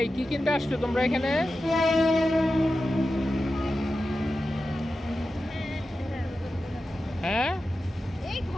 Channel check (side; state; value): both; normal; correlation 0.92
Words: কি কিনতে আসছো তোমরা এখানে? হ্যাঁ, এই